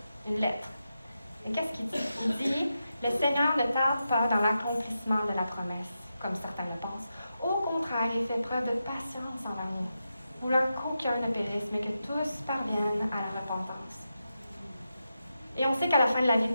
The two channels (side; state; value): both; inverted; correlation -0.88